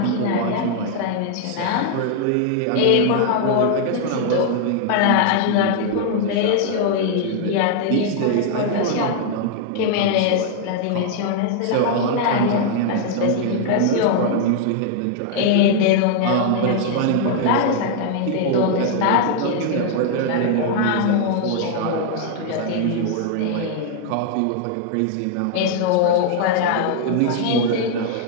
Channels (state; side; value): different; both; correlation 0.00